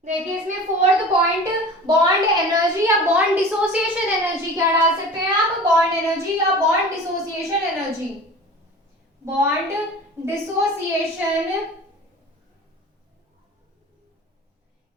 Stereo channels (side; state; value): both; normal; correlation 0.39